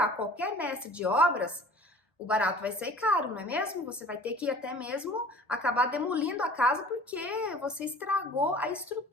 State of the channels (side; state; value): both; normal; correlation 0.45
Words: qualquer mestre de obras, o barato vai sair caro, não é mesmo? Você vai ter que até mesmo acabar demolindo a casa porque você estragou a